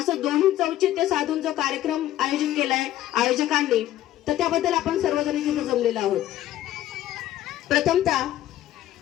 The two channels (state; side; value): quieter; right; 13.4 dB